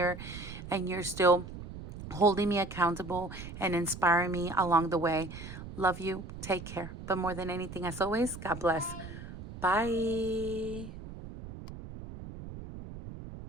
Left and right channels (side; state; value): right; noise; rumble, 11 dB below the sound